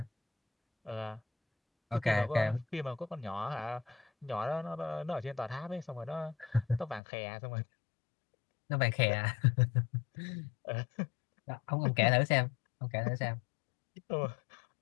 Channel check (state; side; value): drops out; right; at 7.0 s